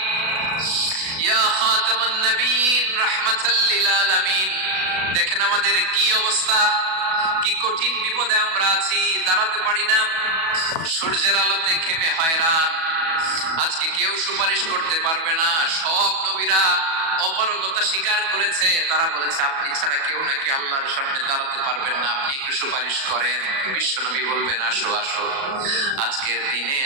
ইয়া খাতামান নবীন, রাহমাতাল লিল আলামিন। দেখেন আমাদের কি অবস্থা, কি কঠিন বিপদে আমরা আছি, দাঁড়াতে পারি না, সূর্যের আলোতে ঘেমে হয়রান। আজকে কেউ সুপারিশ করতে পারবে না। সব নবীরা অপারগতা স্বীকার করেছে, তারা বলেছে আপনি ছাড়া কেউ নাকি আল্লাহর সামনে দাঁড়াতে পারবেন না, আপনি একটু সুপারিশ করেন। বিশ্বনবী বলবেন, আসো আসো, আজকের দিনে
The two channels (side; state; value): left; late; 37 ms